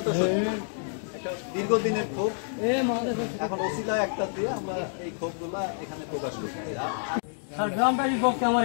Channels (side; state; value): right; silent; digital silence